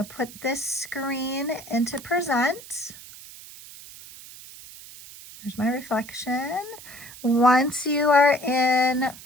put this screen into present. There's my reflection. Once you are in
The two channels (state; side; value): noise; right; hiss, 17 dB below the sound